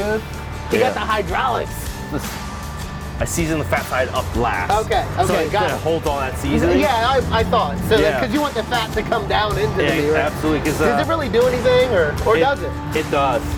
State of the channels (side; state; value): both; identical; correlation 1.00